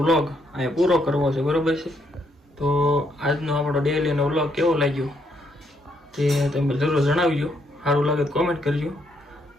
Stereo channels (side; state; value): both; normal; correlation 0.74